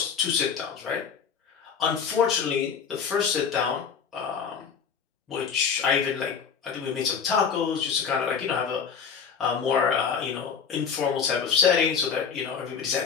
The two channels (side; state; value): right; quieter; 6.5 dB